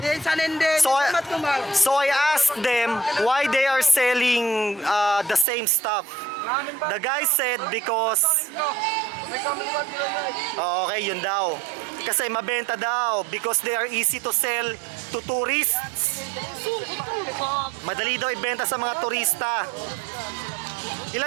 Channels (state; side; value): drops out; left; at 5.5 s